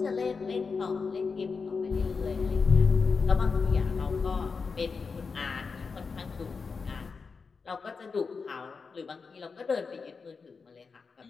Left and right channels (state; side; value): quieter; right; 5.0 dB